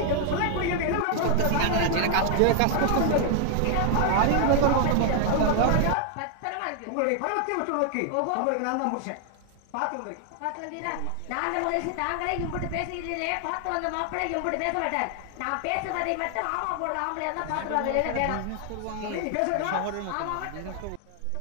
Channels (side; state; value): both; different; correlation 0.00